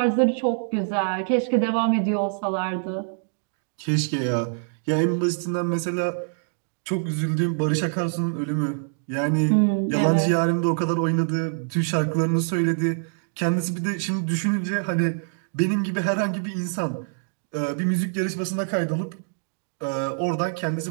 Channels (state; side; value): silent; left; digital silence